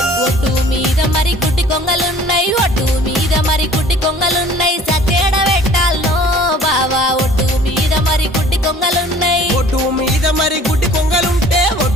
ఒడ్డు మీద మరి గుడ్డి కొంగలున్నాయి ఒడ్డు మీద మరి గుడ్డి కొంగలున్నాయి సచేడ పెట్టాలనో బావా ఒడ్డు మీద మరి గుడ్డి కొంగలున్నాయి ఒడ్డు మీద మరి గుడ్డి కొంగలుంటే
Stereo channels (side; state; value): both; normal; correlation 0.51